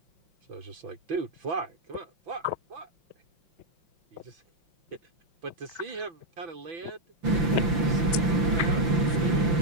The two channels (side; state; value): left; late; 5.9 ms